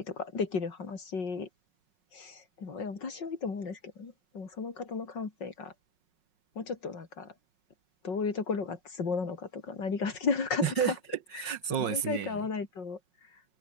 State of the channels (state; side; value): late; right; 5.5 ms